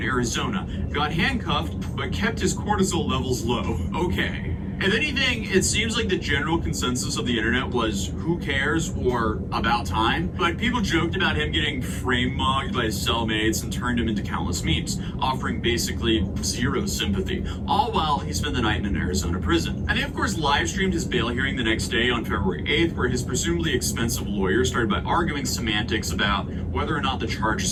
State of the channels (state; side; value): identical; both; correlation 1.00